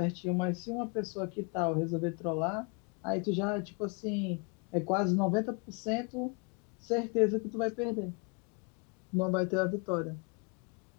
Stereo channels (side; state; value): right; quieter; 34.6 dB